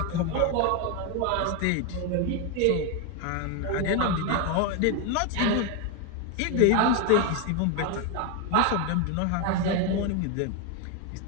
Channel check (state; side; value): different; both; correlation 0.01